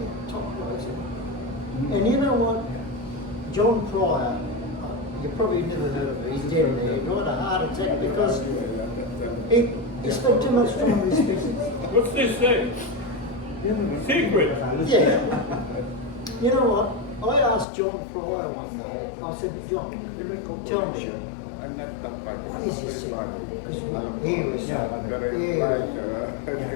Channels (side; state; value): right; drops out; at 17.7 s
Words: top guys. And you know what? John Pryor, you probably never heard of him. He's dead there. He died a heart attack because he spent too much time in this business. What's this say? Secret. Yeah. You know what? I asked John Pryor one day, I said, John, tell me, what is this secret? Because he was,